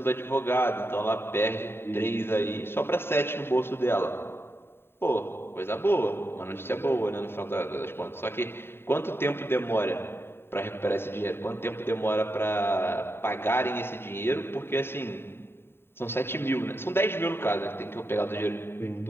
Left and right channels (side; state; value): right; late; 0.11 ms